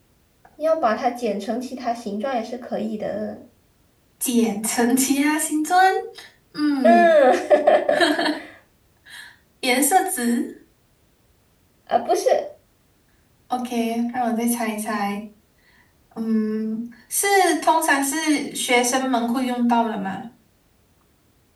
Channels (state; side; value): identical; both; correlation 1.00